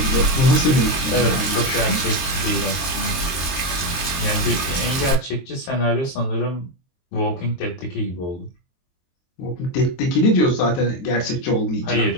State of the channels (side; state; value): right; late; 23 ms